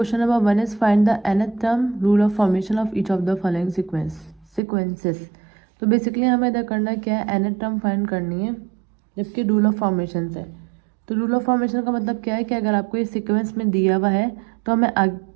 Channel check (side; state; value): left; drops out; at 4.6 s